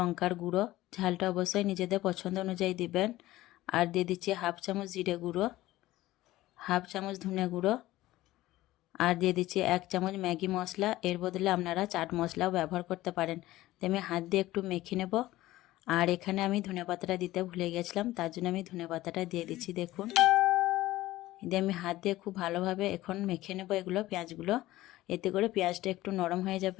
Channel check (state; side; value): quieter; right; 16.5 dB